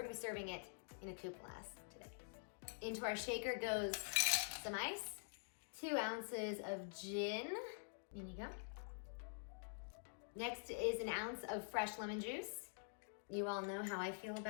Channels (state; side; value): silent; right; digital silence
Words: gonna be serving it in a coupe glass today. Into our shaker goes some ice, 2 ounces of gin, in you go. Next is an ounce of fresh lemon juice. You all know how I feel